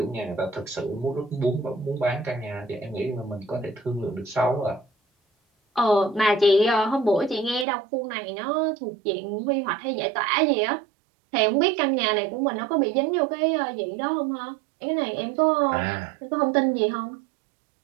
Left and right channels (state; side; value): drops out; left; at 7.7 s